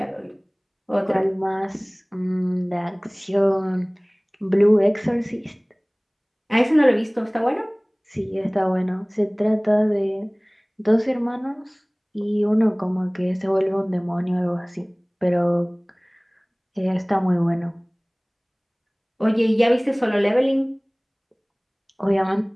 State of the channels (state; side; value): identical; both; correlation 1.00